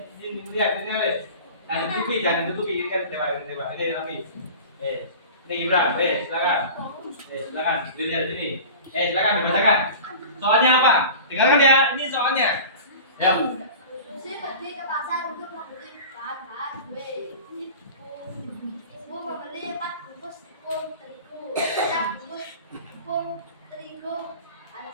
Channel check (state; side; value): inverted; both; correlation -0.37